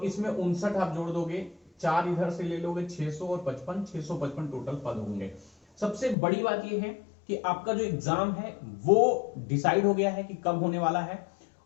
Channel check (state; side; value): drops out; right; at 6.2 s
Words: इसमें 59 आप जोड़ दोगे, 4 इधर से ले लोगे, 600 और 55, 655 टोटल पद होंगे। सबसे बड़ी बात यह है कि आपका जो एग्जाम है वो डिसाइड हो गया है कि कब होने वाला है।